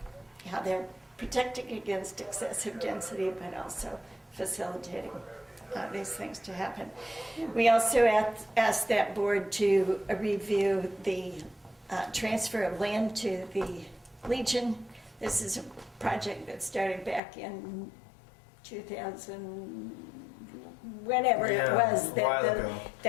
how they're protecting against excessive density, but also facilitating these things to happen. We also asked that board to review the transfer of land to the Legion. This is a project that started back in 2000, whenever it was,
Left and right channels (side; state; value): right; drops out; at 17.2 s